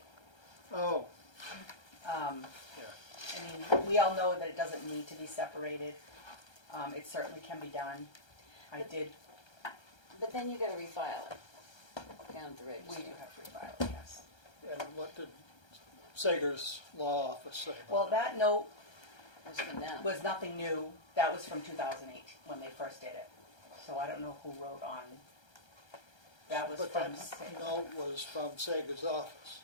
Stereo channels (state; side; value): late; right; 1.3 ms